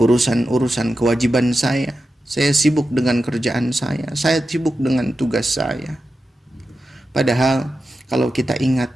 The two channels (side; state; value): both; normal; correlation 0.91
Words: kewajiban saya. Saya sibuk dengan kerjaan saya. Saya sibuk dengan tugas saya. Padahal kalau kita